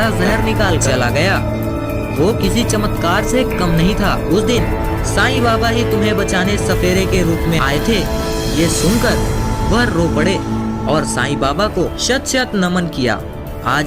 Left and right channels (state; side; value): identical; both; correlation 1.00